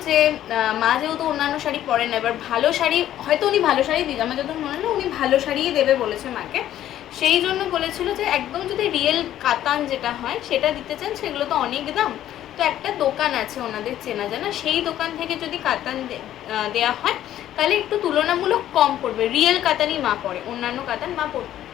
যে মা যেহেতু অন্যান্য শাড়ি পরেন না, এবার ভালো শাড়ি হয়তো উনি ভালো শাড়ি দিন, আমার যত মনে হলো উনি ভালো শাড়িই দেবে বলেছে মাকে। সেই জন্য বলেছিল যে একদম যদি রিয়েল কাতান যেটা হয় সেটা দিতে চান, সেগুলো তো অনেক দাম। তো একটা দোকান আছে ওনাদের চেনা জানা, সেই দোকান থেকে যদি কাতান দেওয়া হয় তাহলে একটু তুলনামূলক কম পড়বে। রিয়েল কাতানই মা পরে, অন্যান্য কাতান মা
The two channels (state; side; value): quieter; right; 12.2 dB